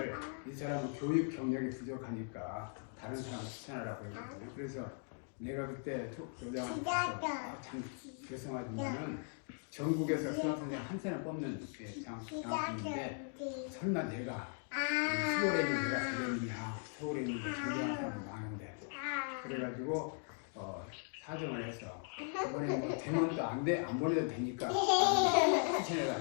이 사람은 교육 경력이 부족하니까 다른 사람 추천하라고 했거든요. 그래서 내가 그때 교장한테 가서 참 죄송하지만은 전국에서 수학선생 한 사람 뽑는 장학금인데 설마 내가 서울에 있는 내가 되겠느냐, 서울에 있는 전교한 사람이 많은데 그래가지고 사정을 해서 이번에 뭐 되면 또 안 보내도 되니까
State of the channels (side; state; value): right; silent; 52 dB below the other